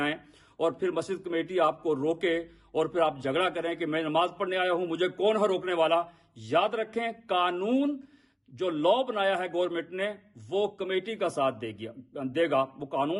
اور پھر مسجد کمیٹی آپ کو روکے اور پھر آپ جھگڑا کریں کہ میں نماز پڑھنے آیا ہوں، مجھے کون ہے روکنے والا. یاد رکھیں، قانون جو لا بنایا ہے گورنمنٹ نے وہ کمیٹی کا ساتھ دے گا. وہ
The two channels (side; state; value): both; identical; correlation 1.00